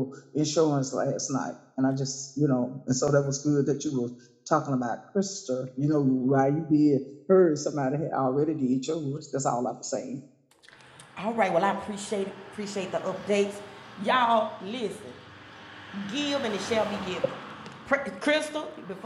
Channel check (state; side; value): identical; both; correlation 1.00